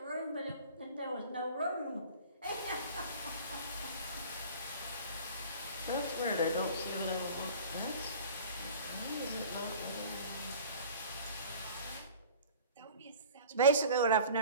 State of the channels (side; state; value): both; inverted; correlation -0.43